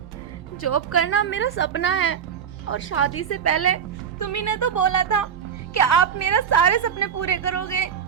जॉब करना मेरा सपना है। और शादी से पहले तुम ही ने तो बोला था कि आप मेरा सारे सपने पूरे करोगे।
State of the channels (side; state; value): left; quieter; 7.9 dB